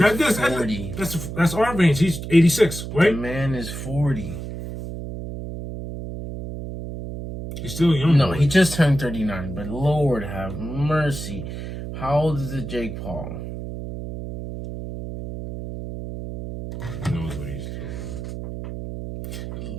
is 40. That's our range. He's 86, right? The man is 40. He's still young. No, he just turned 39, but Lord have mercy. How old is it, Jake Paul? He knows what he's doing.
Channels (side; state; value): right; noise; hum, 8 dB below the sound